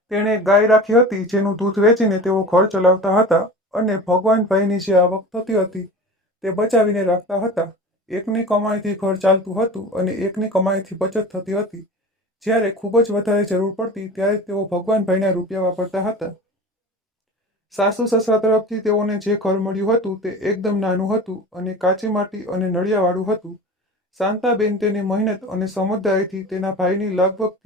તેણે ગાય રાખી હતી જેનું દૂધ વેચીને તેઓ ઘર ચલાવતા હતા અને ભગવાનભાઈની જે આવક થતી હતી તે બચાવીને રાખતા હતા। એકની કમાણીથી ઘર ચાલતું હતું અને એકની કમાણીથી બચત થતી હતી। જ્યારે ખૂબ જ વધારે જરૂર પડતી ત્યારે તેઓ ભગવાનભાઈના રૂપિયા વાપરતા હતા। સાસુ સસરા તરફથી તેઓને જે ઘર મળ્યું હતું તે એકદમ નાનું હતું અને કાચી માટી અને નળિયાવાળું હતું। શાંતાબેન તેની મહેનત અને સમજદારીથી તેના ભાઈની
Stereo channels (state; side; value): normal; both; correlation 0.35